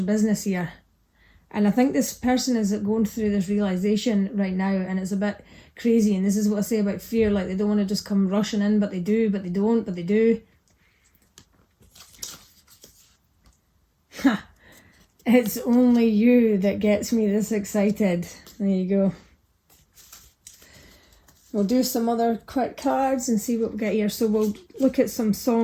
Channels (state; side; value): identical; both; correlation 1.00